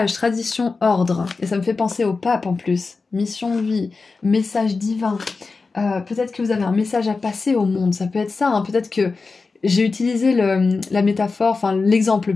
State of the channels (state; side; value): quieter; right; 4.2 dB